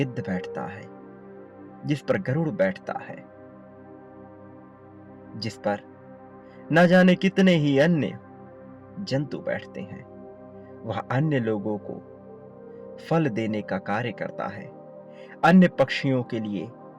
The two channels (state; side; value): identical; both; correlation 1.00